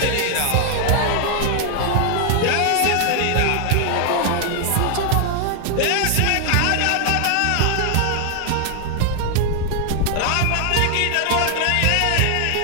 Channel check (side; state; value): both; different; correlation 0.00